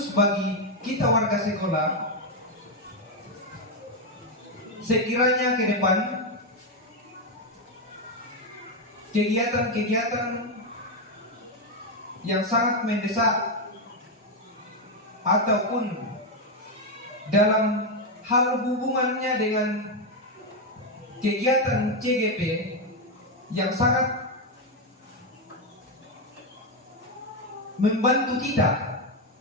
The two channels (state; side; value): normal; both; correlation 0.05